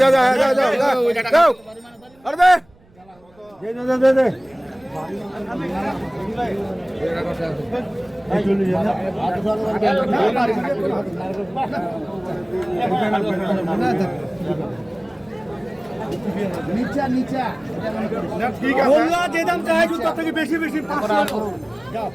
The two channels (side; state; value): right; noise; rumble, 30 dB below the sound